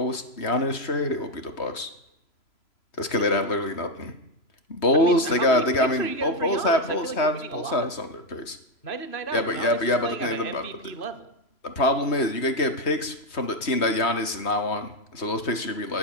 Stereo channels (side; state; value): right; late; 3.2 ms